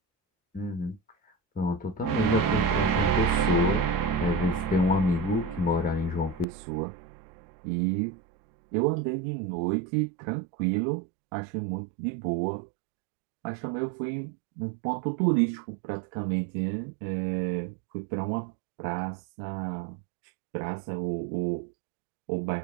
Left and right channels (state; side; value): drops out; left; at 6.5 s